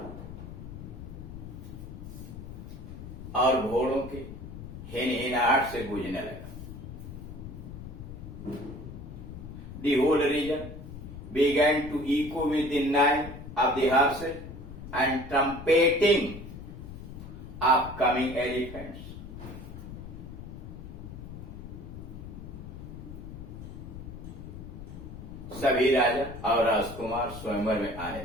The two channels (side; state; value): left; noise; rumble, 11 dB below the sound